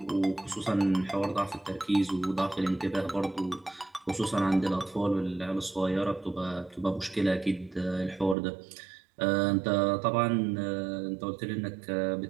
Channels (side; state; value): left; drops out; at 8.3 s